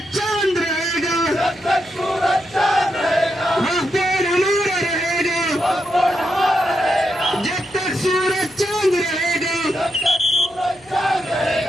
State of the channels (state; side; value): noise; right; hum, 28 dB below the sound